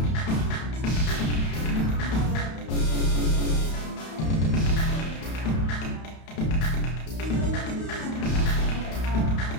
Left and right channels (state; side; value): late; right; 31 ms